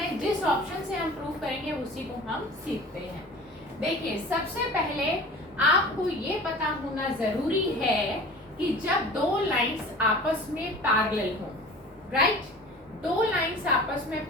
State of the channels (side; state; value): both; normal; correlation 0.41